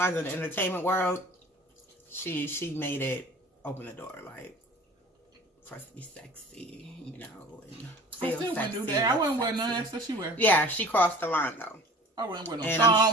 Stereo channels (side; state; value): both; normal; correlation 0.44